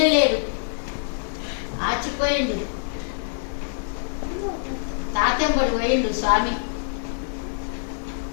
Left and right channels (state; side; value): silent; right; digital silence